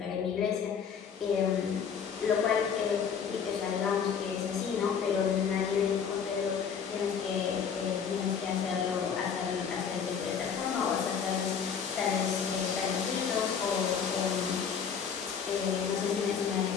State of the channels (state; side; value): quieter; right; 6.9 dB